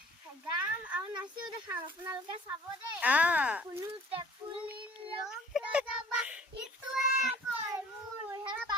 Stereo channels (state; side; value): normal; both; correlation 0.51